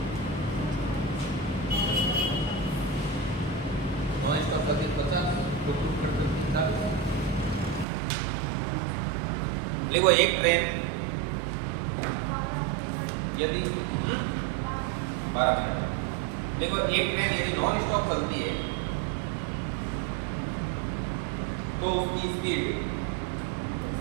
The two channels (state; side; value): drops out; left; at 7.9 s